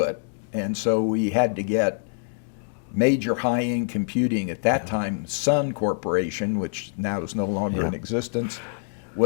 And so we had to get major high-end computing. At that time, Sun Corporation, which now is no longer in existence,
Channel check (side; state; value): right; silent; digital silence